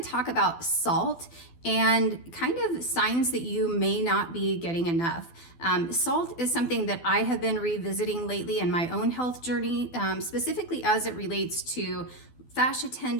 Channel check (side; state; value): right; late; 12 ms